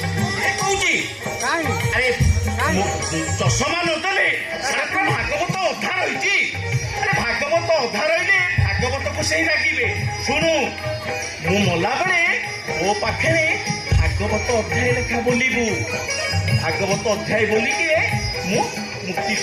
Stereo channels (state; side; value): identical; both; correlation 1.00